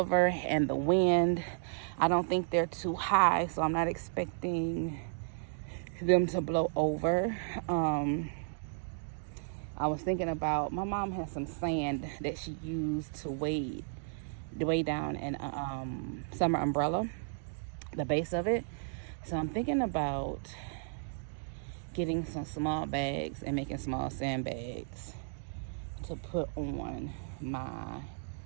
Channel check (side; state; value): left; silent; digital silence